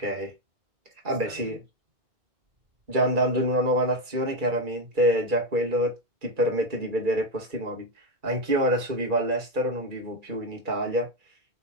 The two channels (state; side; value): late; left; 2.3 ms